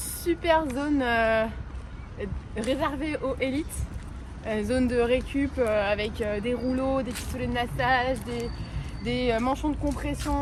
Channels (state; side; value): identical; both; correlation 1.00